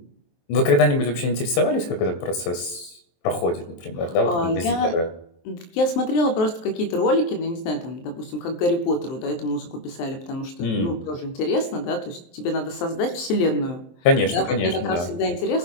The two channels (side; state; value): right; late; 23 ms